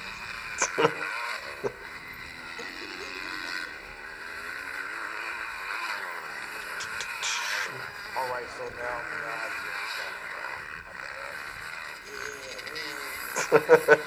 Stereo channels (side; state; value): both; identical; correlation 1.00